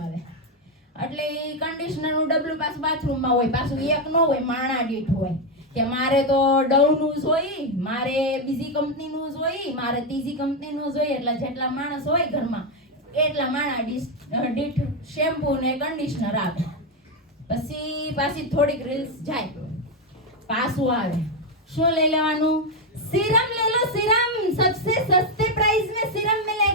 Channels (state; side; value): normal; both; correlation 0.06